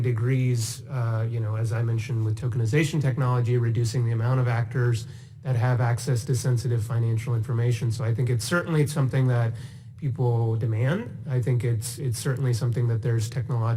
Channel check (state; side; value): identical; both; correlation 1.00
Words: degrees, as I mentioned, with tokenization technology, reducing the amount of actors that have access to sensitive financial information. So I think it's certainly something that people demand. I think it's certainly something that there's